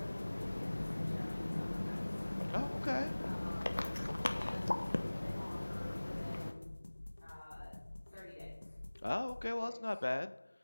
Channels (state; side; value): inverted; both; correlation -1.00